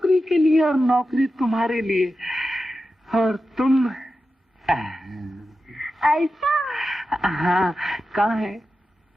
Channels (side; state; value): both; normal; correlation 0.91